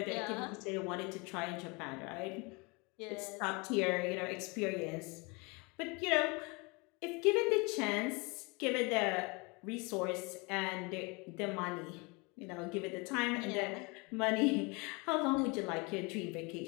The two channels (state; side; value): quieter; right; 28.4 dB